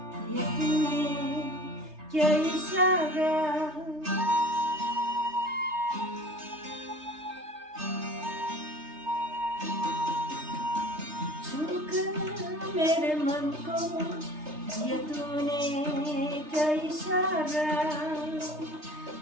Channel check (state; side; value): late; left; 3.3 ms